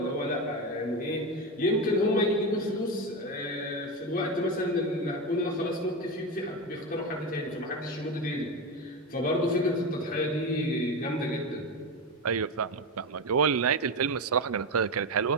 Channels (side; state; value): both; normal; correlation 0.16